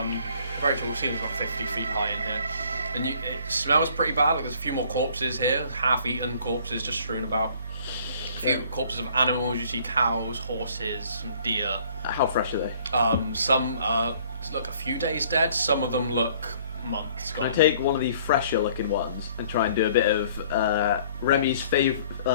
Very tall ceilings, about 50 feet high in here. And it smells pretty bad. Like there's a few more corpses here, half-eaten corpses just strewn about. A few corpses of animals. You see cows, horses, some deer. How fresh are they? Some look a few days dead. Some of them look months Can gone. I take one of the fresher looking ones and try and do a bit of Remy's famous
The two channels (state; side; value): inverted; both; correlation -0.57